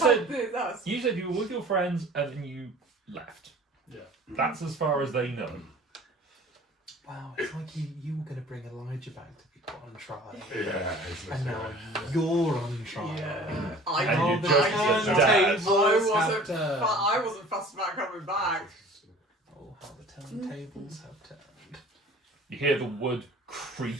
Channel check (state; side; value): normal; both; correlation 0.46